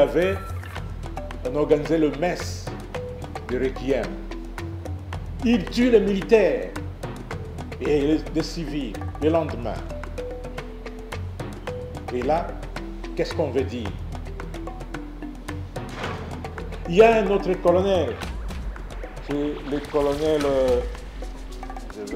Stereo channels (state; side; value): identical; both; correlation 1.00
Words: on organisait le messe de Requiem. Ils tuent les militaires et les civils le lendemain. Et là, qu'est-ce qu'on veut dire? Il y a un autre colonel, c'est le colonel, je